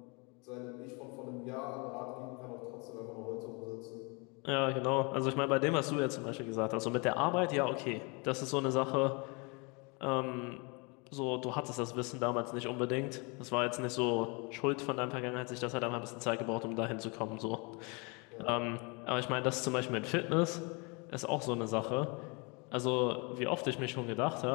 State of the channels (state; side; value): quieter; right; 30.8 dB